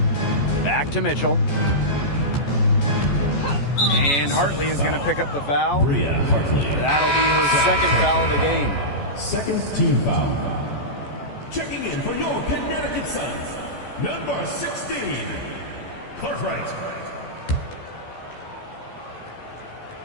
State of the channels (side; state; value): right; late; 14 ms